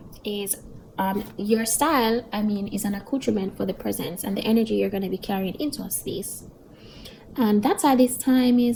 is your style, is an accoutrement for the presence and the energy you're going to be carrying into a space. And that's why this time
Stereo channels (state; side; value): identical; both; correlation 1.00